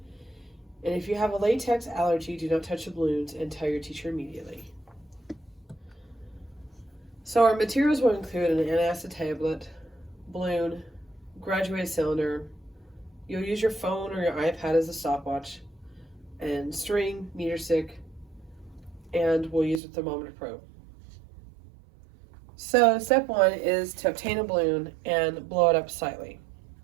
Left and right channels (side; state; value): left; drops out; at 19.8 s